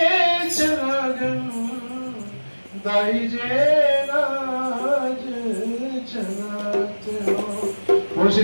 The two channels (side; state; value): both; inverted; correlation -1.00